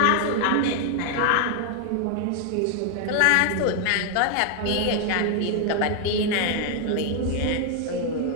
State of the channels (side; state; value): both; different; correlation 0.00